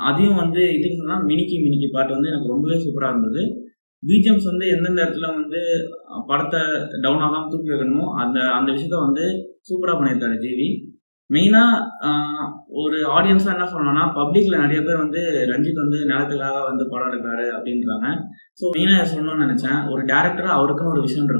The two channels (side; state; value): both; inverted; correlation -1.00